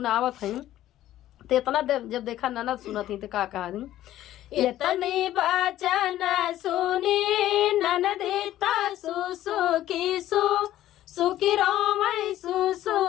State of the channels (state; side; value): quieter; right; 13.5 dB